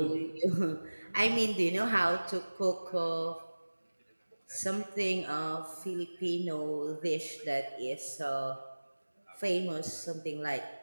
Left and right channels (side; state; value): both; inverted; correlation -1.00